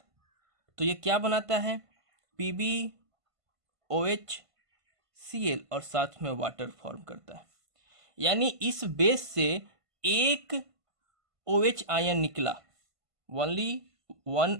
तो ये क्या बनाता है, PbOHCl और साथ में वाटर फॉर्म करता है। यानी इस बेस से एक OH आयन निकला, ओनली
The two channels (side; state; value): left; late; 1.5 ms